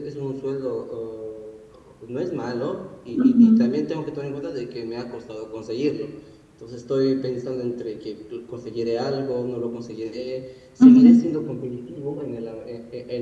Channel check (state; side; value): identical; both; correlation 1.00